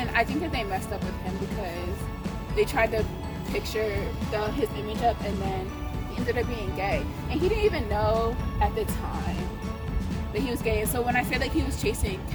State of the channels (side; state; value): both; identical; correlation 1.00